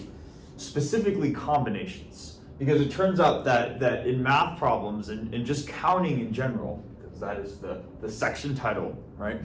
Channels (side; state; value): both; identical; correlation 1.00